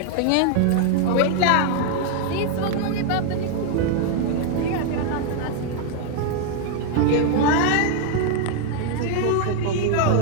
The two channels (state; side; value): different; both; correlation 0.00